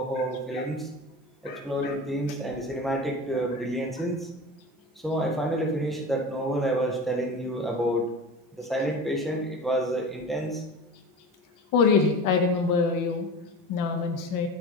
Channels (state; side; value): normal; both; correlation 0.32